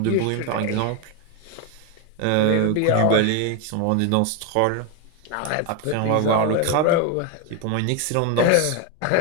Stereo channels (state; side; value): different; both; correlation 0.02